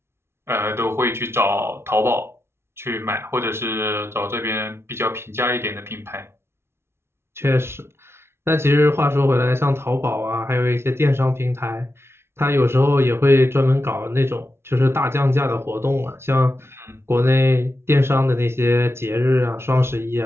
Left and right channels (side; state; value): left; late; 0.12 ms